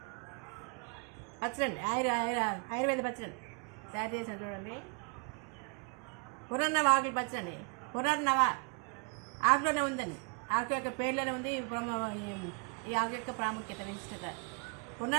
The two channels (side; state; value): left; quieter; 34.8 dB